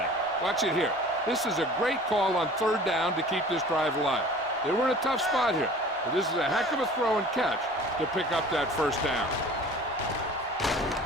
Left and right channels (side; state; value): both; normal; correlation 0.45